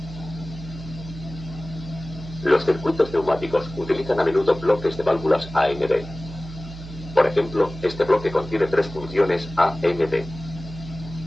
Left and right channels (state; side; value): noise; right; hum, 13 dB below the sound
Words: Los circuitos neumáticos utilizan a menudo bloques de válvulas AND. Por ejemplo, este bloque contiene tres funciones AND.